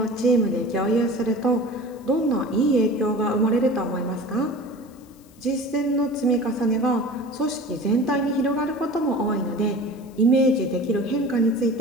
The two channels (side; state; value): left; noise; hiss, 29 dB below the sound